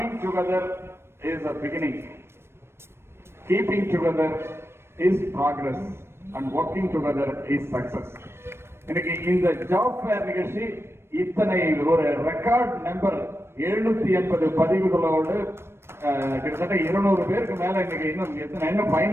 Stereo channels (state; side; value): late; left; 0.12 ms